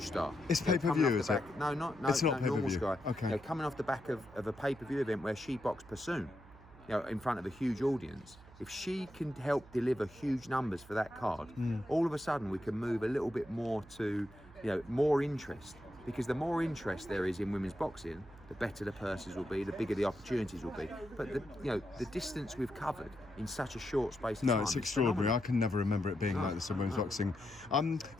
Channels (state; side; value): noise; right; hum, 21 dB below the sound